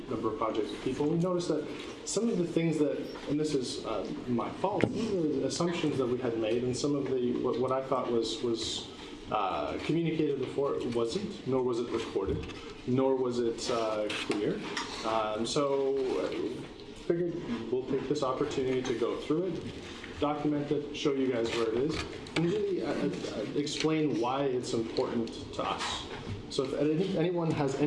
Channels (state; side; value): identical; both; correlation 1.00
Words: a number of projects with people. We noticed that some of the things that, and this is my fault, some of the assumptions that we had made, and some of the what I thought was communicated before wasn't, nor was it recorded, nor was it clear. So figured we'll take this opportunity to go through it, document it, show you guys where it is, and really explain why it's important to us. So if anyone has